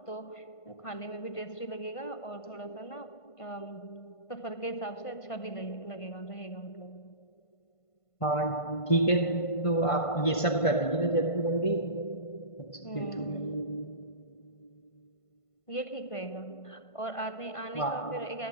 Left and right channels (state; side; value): late; right; 1.5 ms